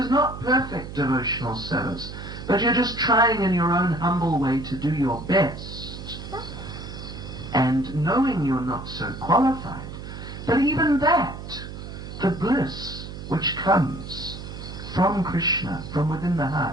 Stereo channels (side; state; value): right; noise; hum, 10 dB below the sound